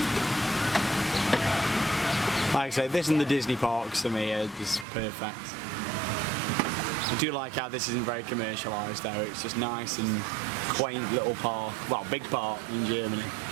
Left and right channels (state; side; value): drops out; left; at 4.9 s